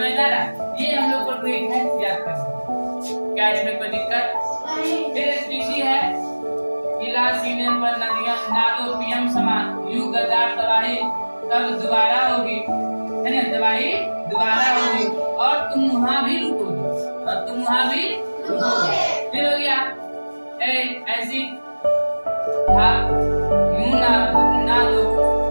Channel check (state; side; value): inverted; both; correlation -1.00